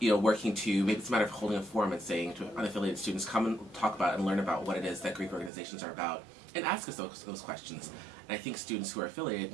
to, maybe it's a matter of holding a forum and saying to unaffiliated students, come and talk about and learn about what it is that Greek organizations are about, and ask us those questions. And I think students who are affiliated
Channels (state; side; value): drops out; left; at 5.5 s